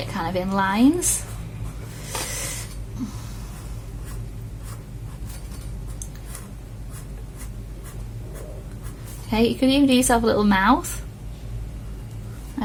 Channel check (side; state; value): both; identical; correlation 1.00